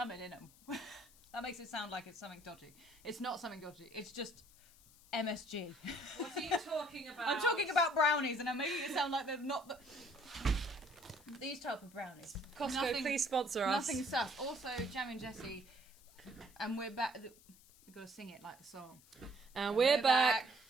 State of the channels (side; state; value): left; noise; hiss, 25 dB below the sound